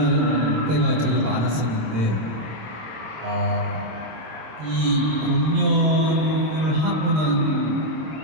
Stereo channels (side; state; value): left; late; 26 ms